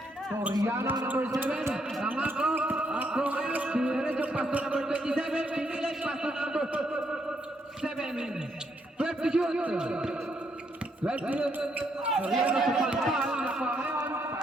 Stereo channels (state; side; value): normal; both; correlation 0.75